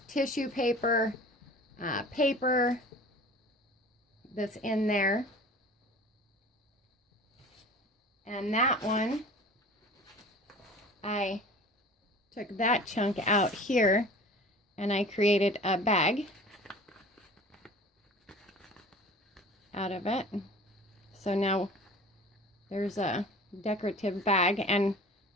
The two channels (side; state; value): both; normal; correlation 0.42